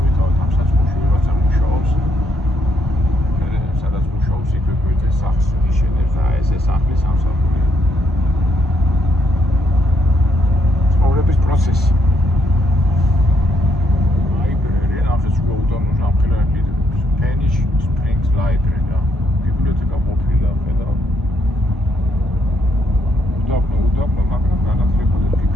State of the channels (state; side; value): normal; both; correlation 0.74